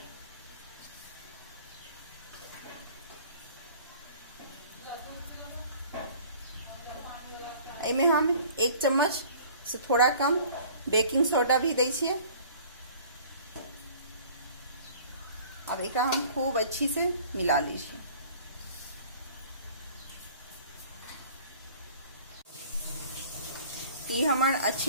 इमे हम 1 चम्मच से थोड़ा कम बेकिंग सोडा भी दे छिए। अब एक हम खूब अच्छी से मिला लीजिए। ये हमार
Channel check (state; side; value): inverted; both; correlation -0.49